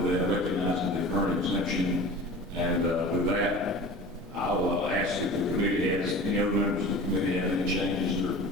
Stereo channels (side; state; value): both; normal; correlation 0.38